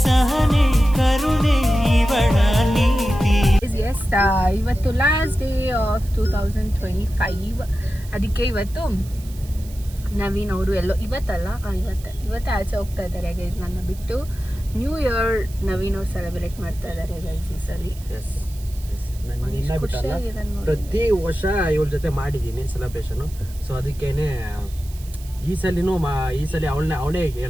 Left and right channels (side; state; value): right; noise; hiss, 20 dB below the sound